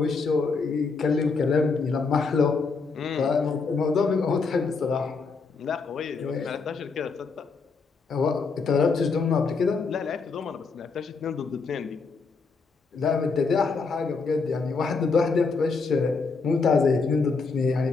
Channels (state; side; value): quieter; right; 4.6 dB